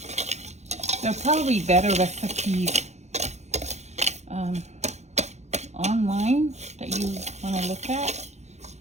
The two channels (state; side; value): late; left; 0.33 ms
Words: There are probably better recipes online that you want to look at.